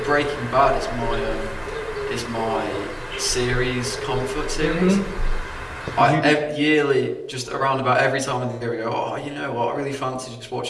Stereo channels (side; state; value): both; identical; correlation 1.00